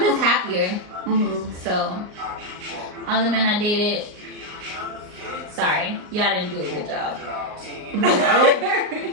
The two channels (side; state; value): left; late; 38 ms